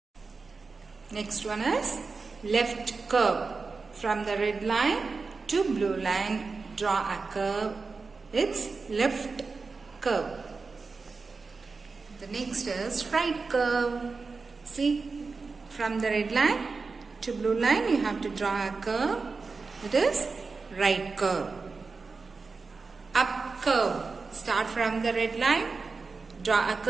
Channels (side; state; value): left; quieter; 4.4 dB